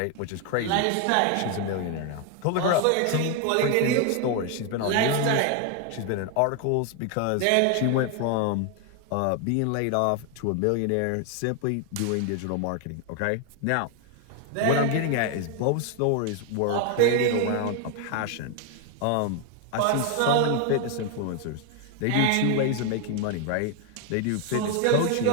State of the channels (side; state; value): both; different; correlation 0.01